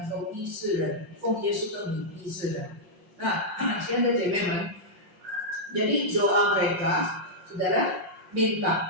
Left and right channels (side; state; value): left; late; 5.6 ms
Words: 够医治人，奉耶稣的名医治人。Nah,现在姐妹们，jadi doa mereka, saudara